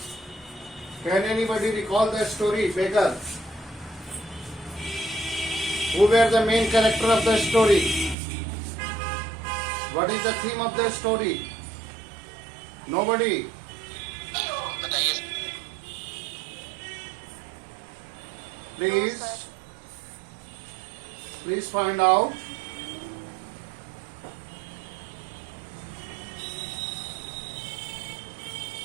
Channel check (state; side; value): drops out; left; at 8.2 s